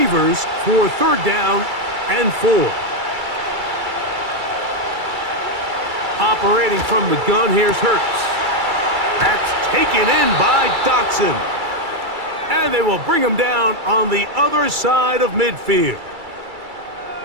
for 3rd down and 4. Operating from the gun, here's Hurts. That's taken in by Dotson. And they will bring him down on the other side of midfield.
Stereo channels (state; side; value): late; left; 2.3 ms